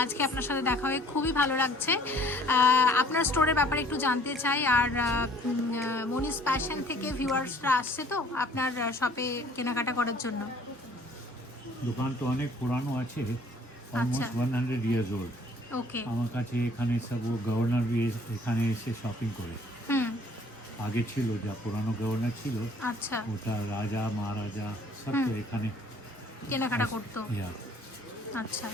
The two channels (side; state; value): both; normal; correlation 0.55